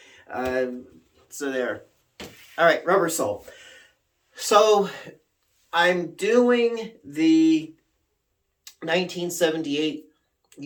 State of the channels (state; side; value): identical; both; correlation 1.00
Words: So there. All right, Rubber Soul. So I'm doing the 1978